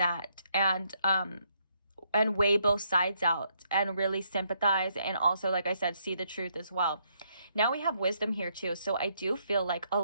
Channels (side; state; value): both; inverted; correlation -0.73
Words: And weigh both sides out and really sympathize, and also, like I said, see the truth as well. Now we have wisdom here too. So I do feel like a